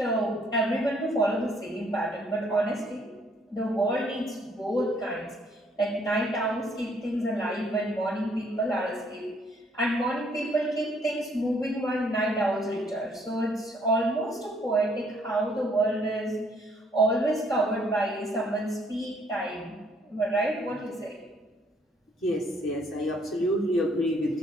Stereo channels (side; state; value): both; normal; correlation 0.66